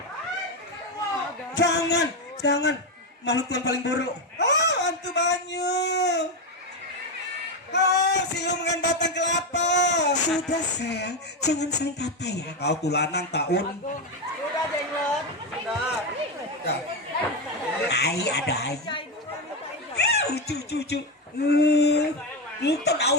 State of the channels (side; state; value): both; normal; correlation 0.10